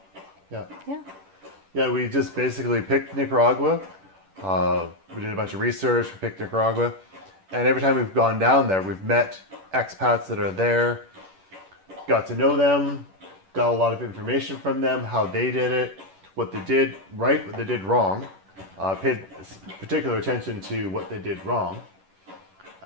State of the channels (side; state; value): left; late; 10 ms